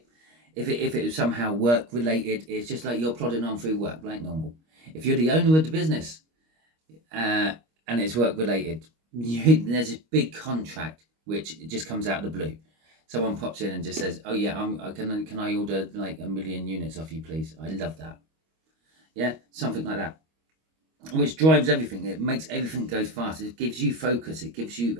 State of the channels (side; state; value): left; late; 25 ms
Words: if it was somehow work related, it's just like you're plodding on through work like normal. If you're the owner of the business and it's work related, there's a big contract which just comes out of the blue. Someone pops in and just says, oh yeah, can I order like 1 million units off you, please? I love that. Yeah, something like that, which drives everything. It makes everything go fast. It gives you focus. It gives